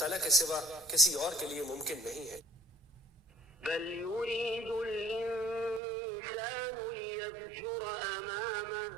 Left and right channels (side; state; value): left; drops out; at 5.8 s